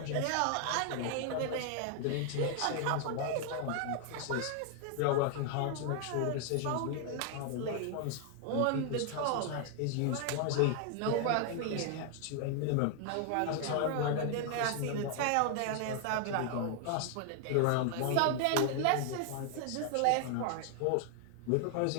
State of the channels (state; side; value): different; both; correlation 0.00